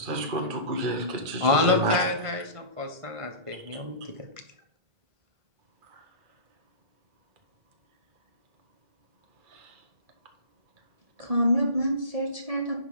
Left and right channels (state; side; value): late; left; 1.5 ms